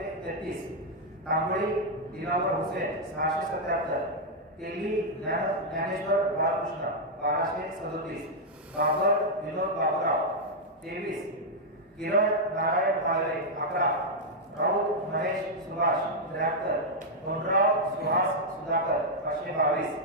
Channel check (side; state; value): both; normal; correlation -0.03